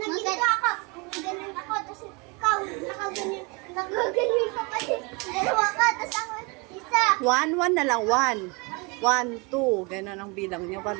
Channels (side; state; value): left; quieter; 28.8 dB